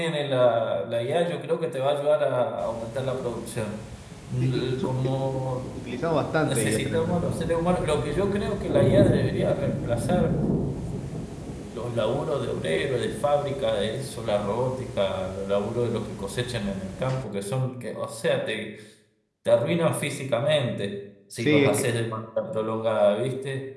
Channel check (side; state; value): both; identical; correlation 1.00